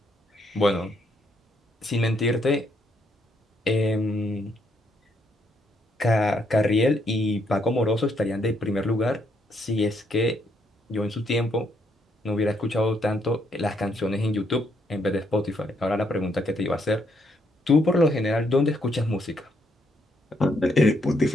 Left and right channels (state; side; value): normal; both; correlation 0.73